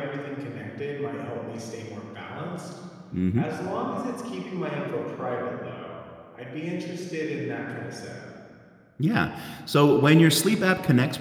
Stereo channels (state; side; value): identical; both; correlation 1.00